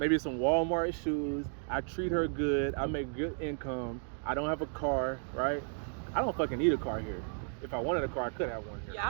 some Walmart shoes. I treat her good. I make good income. I don't have a car, right? I don't fucking need a car here. If I wanted a car, I could have one here. Yeah,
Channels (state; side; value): silent; left; 55 dB below the other